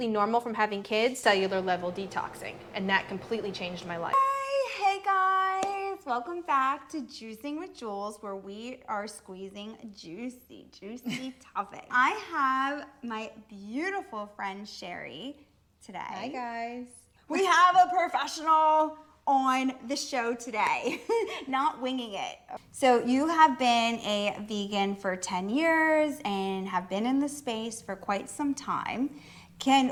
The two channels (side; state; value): both; identical; correlation 1.00